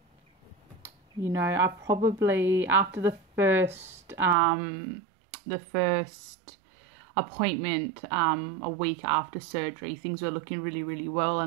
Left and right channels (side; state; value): left; drops out; at 4.4 s